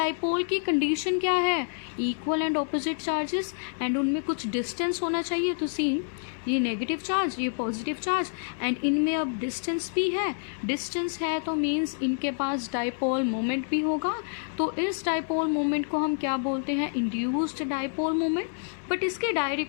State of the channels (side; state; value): right; silent; digital silence